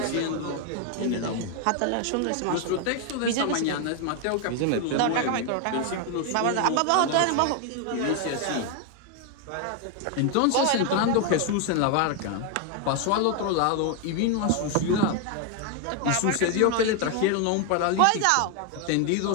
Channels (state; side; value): different; both; correlation 0.01